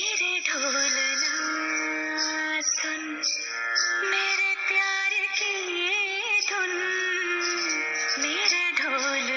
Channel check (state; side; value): identical; both; correlation 1.00